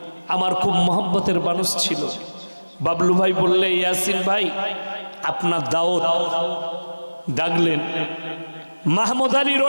আমার খুব মহব্বতের মানুষ ছিল। বাবলু ভাই বললে, ইয়াসিন ভাই আপনার দাওয়াত, ডাকলেন মাহমুদ আলী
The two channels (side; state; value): both; inverted; correlation -1.00